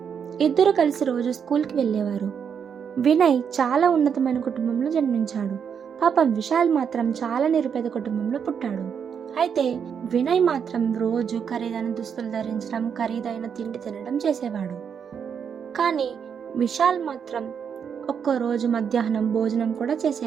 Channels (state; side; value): quieter; left; 7.3 dB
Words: ఇద్దరు కలిసి రోజు స్కూల్కి వెళ్ళేవారు. వినయ్ చాలా ఉన్నతమైన కుటుంబంలో జన్మించాడు. పాపం విశాల్ మాత్రం చాలా నిరుపేద కుటుంబంలో పుట్టాడు. అయితే వినయ్ మాత్రం రోజు ఖరీదైన దుస్తులు ధరించడం, ఖరీదైన తిండి తినడం చేసేవాడు. కానీ విశాల్ మాత్రం ఒక్కరోజు మధ్యాహ్నం భోజనం కూడా